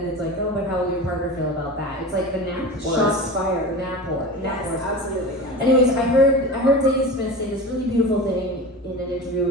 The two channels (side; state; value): both; normal; correlation 0.30